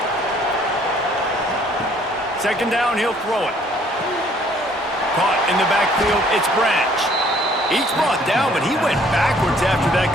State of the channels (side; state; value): both; normal; correlation 0.60